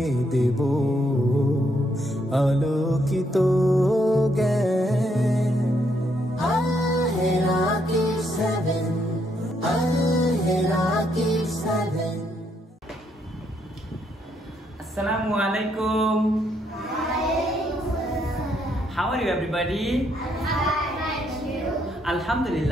দেব আলোকিত জ্ঞান। Assalamu alaikum. How are you everybody?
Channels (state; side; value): normal; both; correlation 0.74